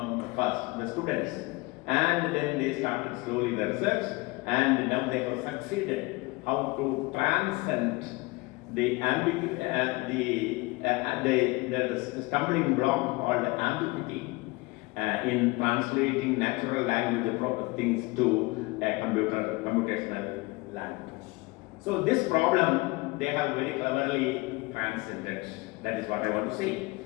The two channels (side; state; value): right; quieter; 23.9 dB